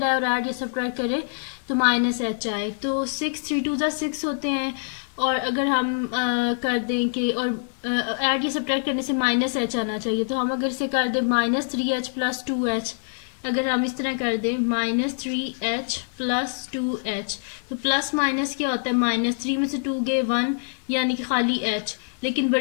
है और ऐड या सब्ट्रैक्ट करें तो माइनस एच आए। तो 6 3 2 6 होते हैं और अगर हम कर दें कि और ऐड या सब्ट्रैक्ट करने से माइनस एच आना चाहिए, तो हम अगर इसे कर दें माइनस 3h प्लस 2h, अगर हम इस तरह कर दें माइनस 3h प्लस 2h, तो प्लस माइनस क्या होता है, माइनस 3 में से 2 गए 1 यानी कि खाली h, लेकिन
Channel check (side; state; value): right; silent; digital silence